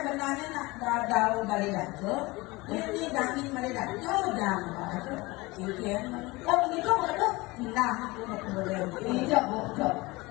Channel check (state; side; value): quieter; right; 22.5 dB